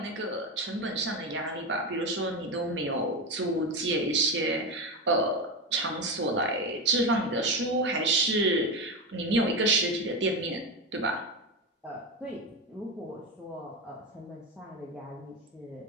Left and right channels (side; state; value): both; normal; correlation 0.16